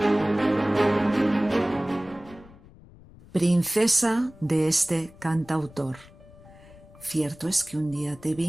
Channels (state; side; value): noise; left; rumble, 22 dB below the sound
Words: Princesa de este cantautor. Cierto es que un día te